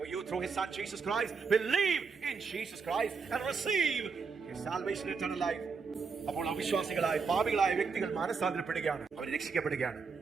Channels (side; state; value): left; quieter; 5.2 dB